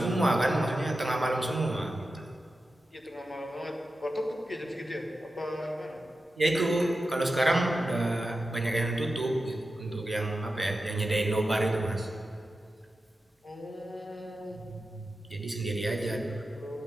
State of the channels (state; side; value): normal; both; correlation 0.92